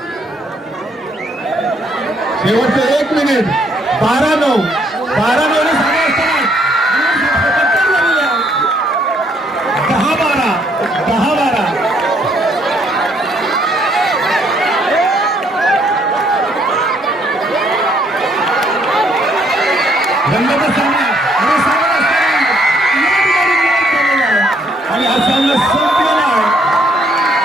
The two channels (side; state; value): both; normal; correlation 0.68